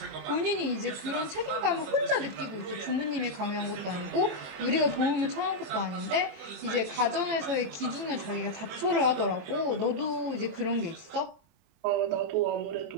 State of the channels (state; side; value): late; left; 23 ms